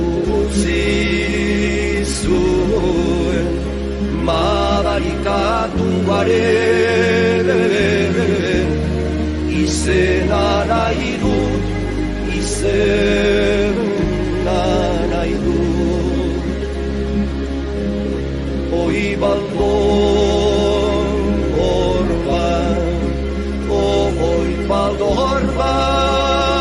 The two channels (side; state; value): both; identical; correlation 1.00